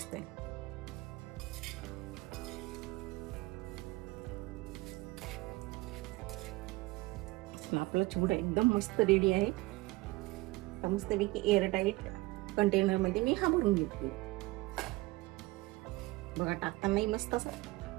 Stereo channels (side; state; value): left; quieter; 21.5 dB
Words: आपला चिवडा एकदम मस्त रेडी आहे. मस्तपैकी एअरटाईट कंटेनर मध्ये मी हा भरून घेतली. बघा टाकतानाही मस्त असा